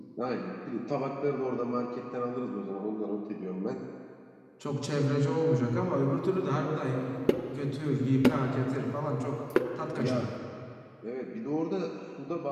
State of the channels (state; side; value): identical; both; correlation 1.00